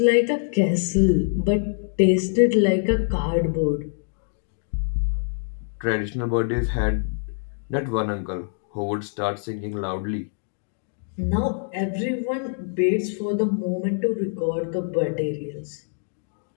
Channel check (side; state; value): right; silent; digital silence